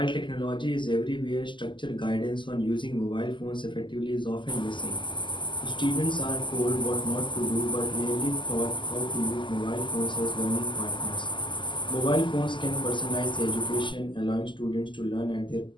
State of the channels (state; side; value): late; right; 0.24 ms